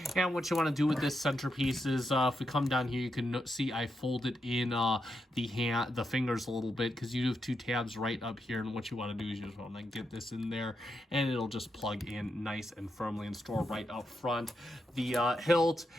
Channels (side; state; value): both; normal; correlation 0.84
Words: And what you want to do with this centerpiece is, if we come down here, you can see I folded in the fingers a little bit, because you have two tabs right up here. And what you want to do is you just want to get this in there, and it'll just plug in nice and firmly and store right up front. The hilt,